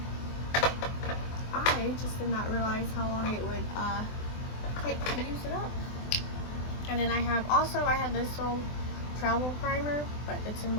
I just did not realize how long it would take to use it up. And then I have this little travel primer, but it's in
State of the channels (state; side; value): late; right; 24 ms